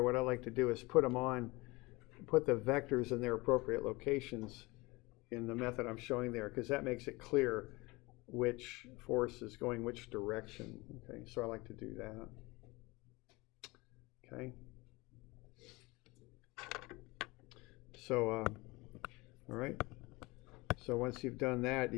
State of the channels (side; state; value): right; quieter; 23.3 dB